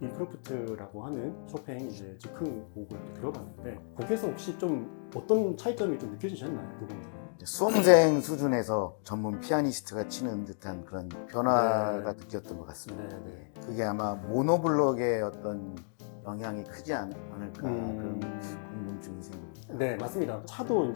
인크로프트라고 하는 쇼팽 이제 즉흥 곡을 들어봤는데, 곡에서 혹시 좀 어떤 차이점이 좀 느껴지셨나요? 그 부분들은? 수험생 수준에서 전문 피아니스트가 치는 듯한 그런 변화가 느꼈던 것 같습니다. 네. 그게 아마 모노블록의 어떤 영향이 크지 않을까 그런 궁금증이 생깁니다. 네, 맞습니다. 차도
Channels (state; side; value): silent; right; digital silence